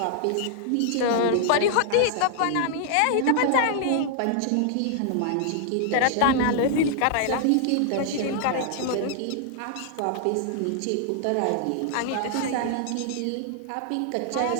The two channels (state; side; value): different; both; correlation 0.00